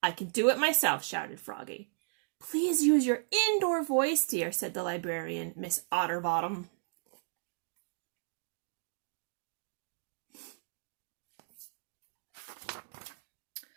I can do it myself, shouted Froggy. Please use your indoor voice, dear, said the librarian, Miss Otterbottom.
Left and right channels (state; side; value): silent; left; digital silence